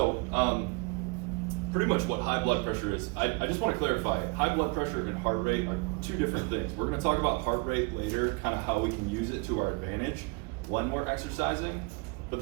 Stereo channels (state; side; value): quieter; left; 29.3 dB